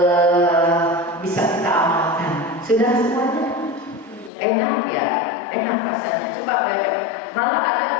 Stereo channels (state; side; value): drops out; right; at 4.3 s